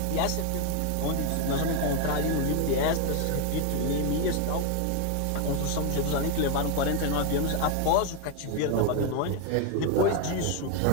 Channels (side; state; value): both; different; correlation 0.01